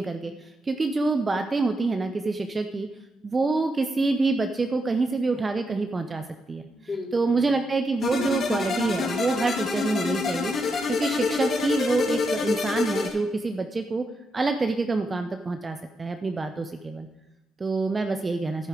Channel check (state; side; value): normal; both; correlation 0.83